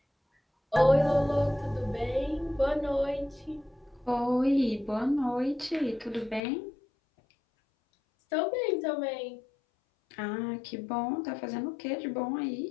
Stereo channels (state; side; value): drops out; right; at 6.4 s